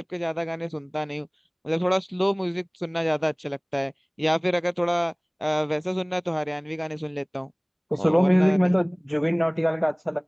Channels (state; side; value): identical; both; correlation 1.00